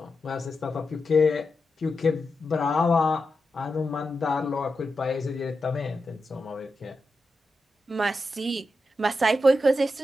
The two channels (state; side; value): normal; both; correlation 0.88